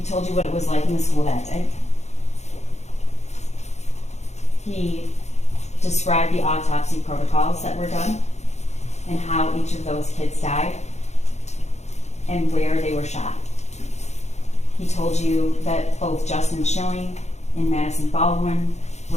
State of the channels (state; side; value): late; right; 0.33 ms